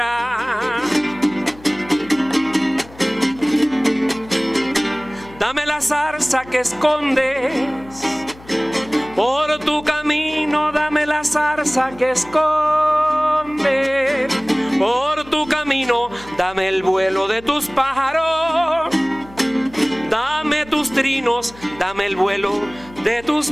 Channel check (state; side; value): noise; left; hum, 21 dB below the sound